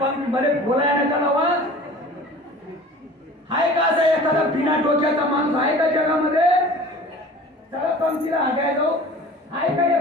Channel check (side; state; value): both; normal; correlation 0.43